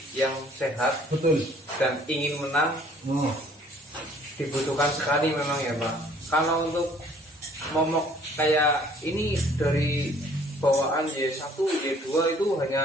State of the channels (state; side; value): normal; both; correlation 0.57